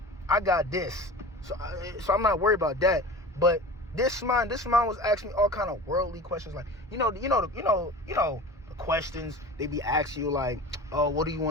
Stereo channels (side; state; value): both; normal; correlation 0.36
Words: I got this. So I'm not worried about that. But this man was asking me all kind of worldly questions. Like, the questions they be asking you, like, oh, what do you